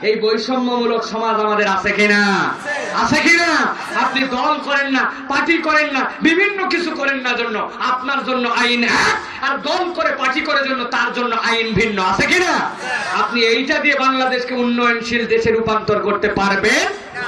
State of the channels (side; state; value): both; identical; correlation 1.00